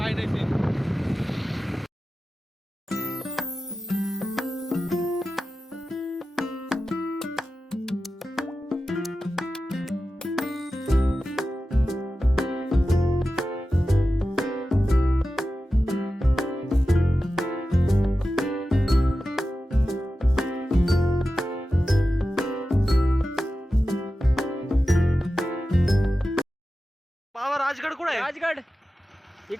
नाही ते. बाबा राजगड कुठे आहे? राजगड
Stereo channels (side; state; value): both; normal; correlation 0.93